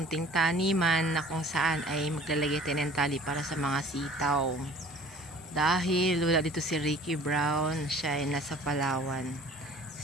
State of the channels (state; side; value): normal; both; correlation 0.48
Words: taniman na kung saan ay maglalagay tayo ng tali para sa mga sitaw. Dahil wala dito si Ricky Brown, siya ay nasa Palawan.